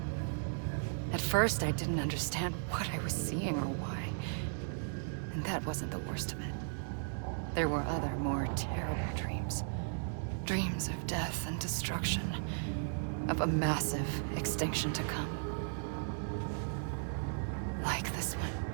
At first, I didn't understand what I was seeing or why. And that wasn't the worst of it. There were other, more terrible dreams. Dreams of death and destruction. Of a massive extinction to come. Like this one.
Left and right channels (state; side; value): silent; left; digital silence